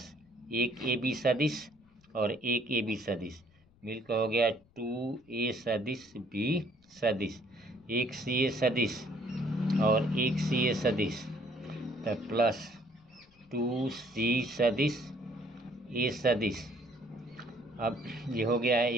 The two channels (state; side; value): noise; left; rumble, 30 dB below the sound